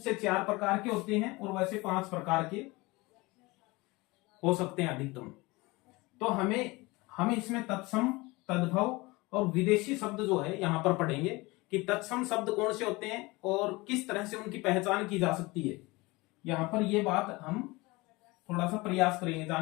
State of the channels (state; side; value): quieter; right; 23.0 dB